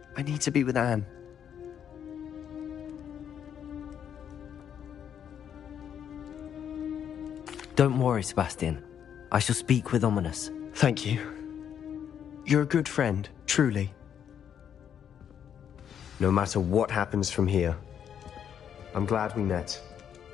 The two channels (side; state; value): right; quieter; 8.7 dB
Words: I need to be with Anne. Don't worry, Sebastian. I shall speak with Ominous. Thank you. You're a good friend, truly. No matter what happens from here, I'm glad we met.